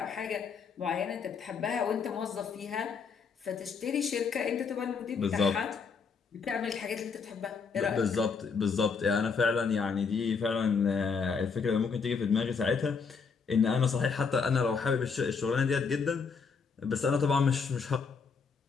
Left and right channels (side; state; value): right; quieter; 5.4 dB